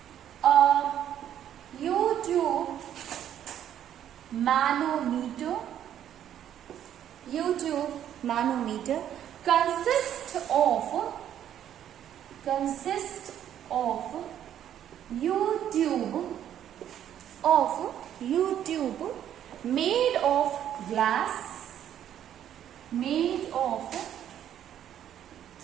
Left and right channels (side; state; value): left; quieter; 10.4 dB